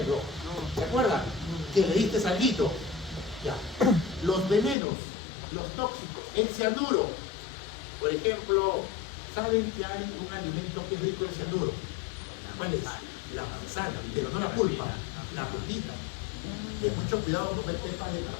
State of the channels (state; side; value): drops out; right; at 4.8 s